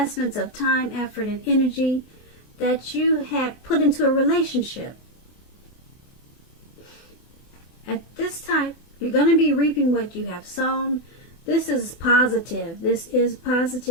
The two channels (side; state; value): right; late; 24 ms